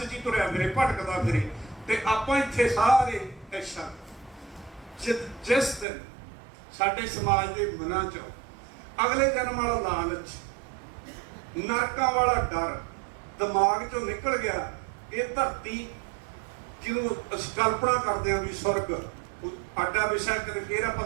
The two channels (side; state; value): left; drops out; at 5.9 s